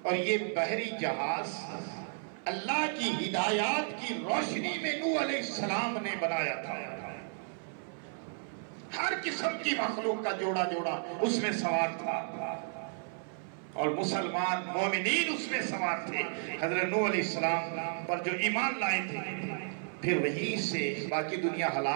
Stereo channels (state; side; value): silent; left; 56 dB below the other